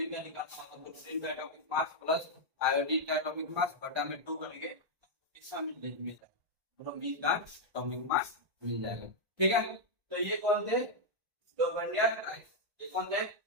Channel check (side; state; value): left; late; 1.5 ms